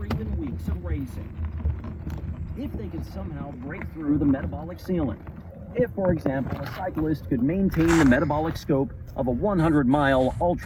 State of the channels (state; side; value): identical; both; correlation 1.00